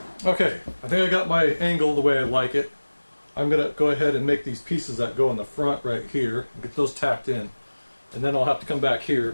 Okay, I think I got my angle the way I like it. I'm going to go ahead and make these pieces that go in the front right here, and get those tacked in. And then I'll have to come back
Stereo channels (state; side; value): inverted; both; correlation -1.00